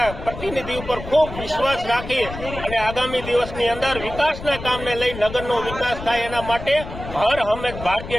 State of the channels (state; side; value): noise; left; rumble, 11 dB below the sound